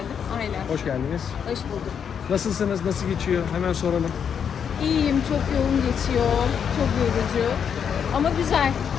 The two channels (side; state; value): right; quieter; 7.5 dB